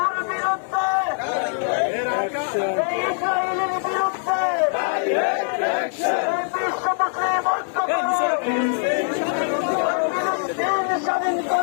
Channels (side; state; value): right; silent; 64 dB below the other